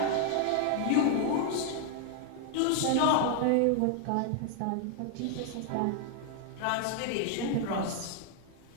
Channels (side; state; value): both; different; correlation 0.00